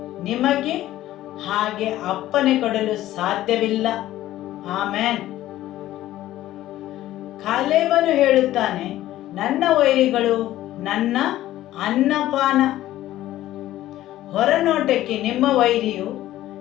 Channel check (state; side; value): quieter; right; 14.4 dB